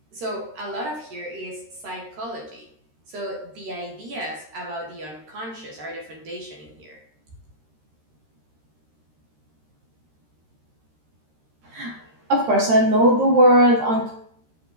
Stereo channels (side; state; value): left; late; 13 ms